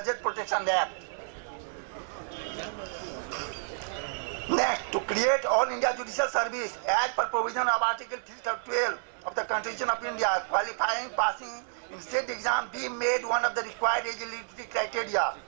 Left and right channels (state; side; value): silent; left; 58 dB below the other